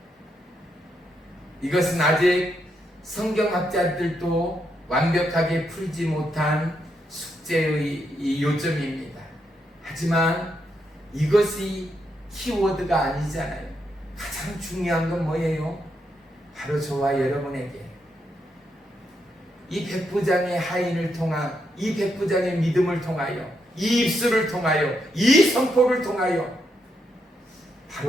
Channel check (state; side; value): normal; both; correlation 0.80